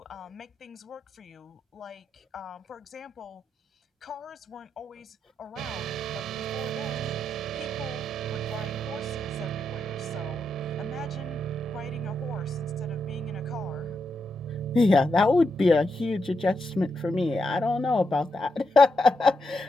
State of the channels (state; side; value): normal; both; correlation 0.83